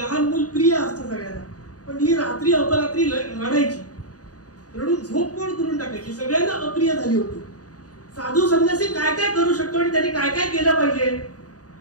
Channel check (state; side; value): late; right; 0.68 ms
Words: मूल प्रिय असतं सगळ्यांना, पण ही रात्री अपरात्री रडायची, रडून झोप कोण करून टाकायची, सगळ्यांना अप्रिय झाली होती. साधू संन्यासी काय काय करू शकतो आणि त्यांनी काय काय केलं पाहिजे.